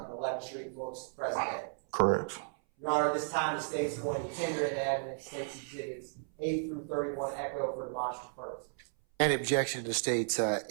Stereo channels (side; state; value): left; silent; 55 dB below the other